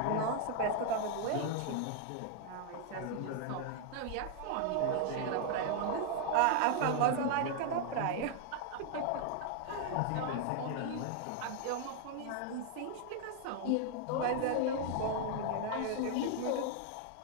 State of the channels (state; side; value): different; both; correlation 0.00